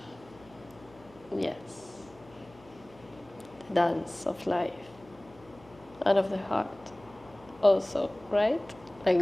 Yes. The dance of life and of the heart also, right? Like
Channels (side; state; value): left; noise; hum, 24 dB below the sound